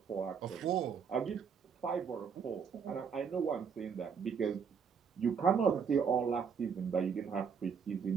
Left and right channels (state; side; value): quieter; left; 6.6 dB